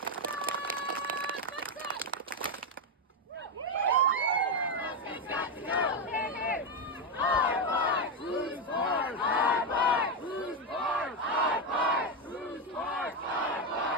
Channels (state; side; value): normal; both; correlation 0.07